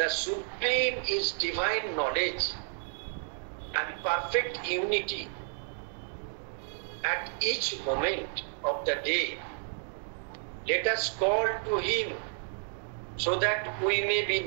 supreme is divine knowledge and perfect unity at each moment of the day. Let us call to him so that we may be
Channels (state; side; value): silent; left; digital silence